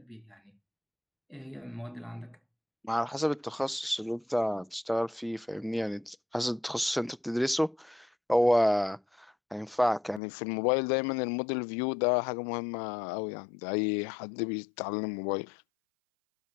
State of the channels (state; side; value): drops out; right; at 10.2 s